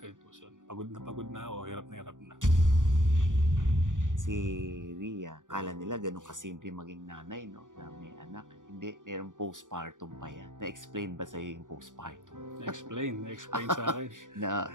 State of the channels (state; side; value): late; left; 0.87 ms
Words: sitwasyon. Pagod na ako, hirap na. Si Ria, akala nila ganun kasimple maging nanay, no? Na may anak. Hindi, merong postpartum pa yan. Na-explain ba sa'yo yung postpartum? Na-explain sa akin.